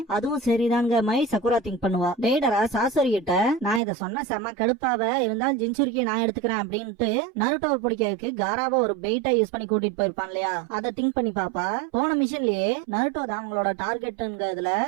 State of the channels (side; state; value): left; drops out; at 3.8 s